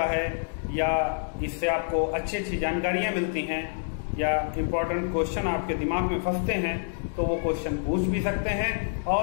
है या इससे आपको अच्छी जानकारियां मिलती हैं या इम्पोर्टेंट क्वेश्चन आपके दिमाग में फंसते हैं तो वो क्वेश्चन पूछ भी सकते हैं,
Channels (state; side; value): silent; right; digital silence